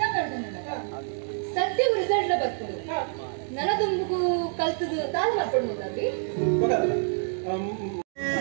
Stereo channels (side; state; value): left; silent; 60 dB below the other